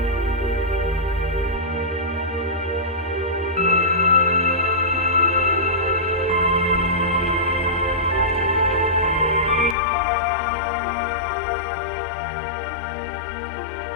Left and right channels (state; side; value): drops out; right; at 9.8 s